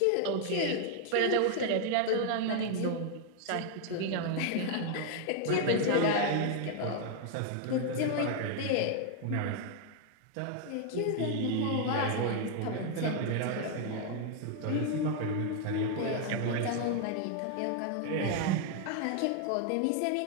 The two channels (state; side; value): different; both; correlation 0.00